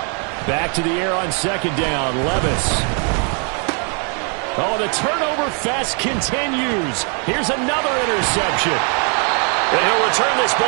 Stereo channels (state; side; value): quieter; left; 38.9 dB